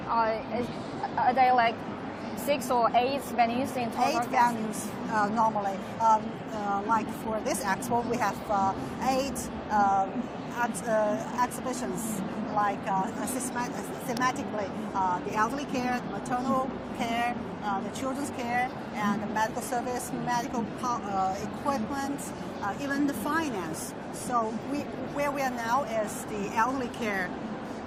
are there like 6 or 8 venues in total? 8 venues normally. Like for this expo, we have 8 exhibitions, like thematically the elderly care, the maternal care, the children's care, and the medical service, medical equipment, even the finance. So where we are now is the elderly care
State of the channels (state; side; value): identical; both; correlation 1.00